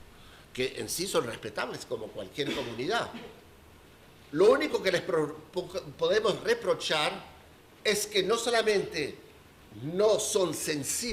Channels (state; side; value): identical; both; correlation 1.00